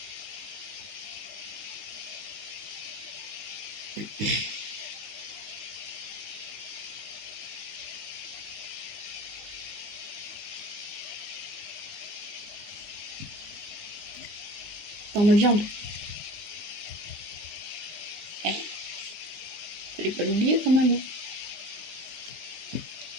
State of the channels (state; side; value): late; left; 19 ms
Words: dans ma viande. Fallait pas l'oublier quand même.